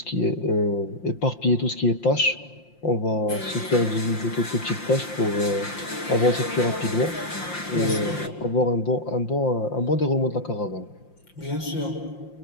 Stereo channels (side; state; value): right; late; 5.7 ms